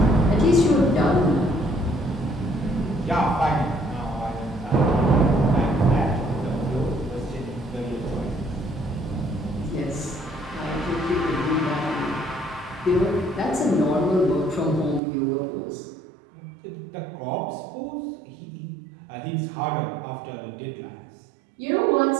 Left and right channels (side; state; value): left; drops out; at 15.0 s